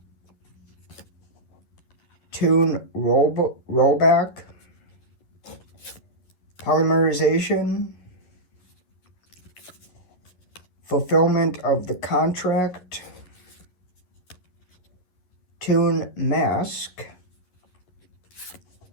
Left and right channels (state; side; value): late; right; 11 ms